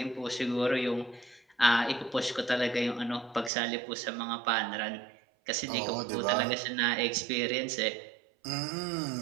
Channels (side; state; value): left; drops out; at 3.5 s